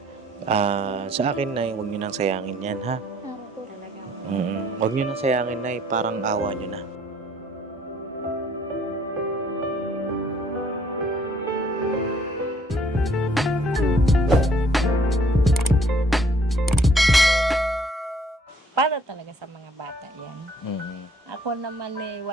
Sa akin, Nay, huwag nyo nang sayangin yan, ha? Huwag nyo nang sayangin, Nay. Parang awa nyo na. Para talaga sa mga bata yan. Ako naman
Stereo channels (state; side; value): normal; both; correlation 0.61